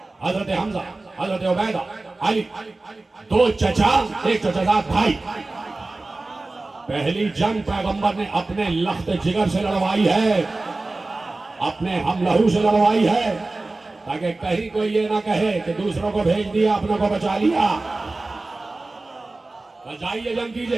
حضرت حمزہ، حضرت عبیدہ، علی، 2 چچا، ایک چچا زاد بھائی. پہلی جنگ پیغمبر نے اپنے لخت جگر سے لڑوائی ہے، اپنے ہم لہو سے لڑوائی ہے، تاکہ کہیں کوئی یہ نہ کہے کہ دوسروں کو بھیج دیا اپنوں کو بچا لیا. جائیے جنگ کیجئے.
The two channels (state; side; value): quieter; left; 3.2 dB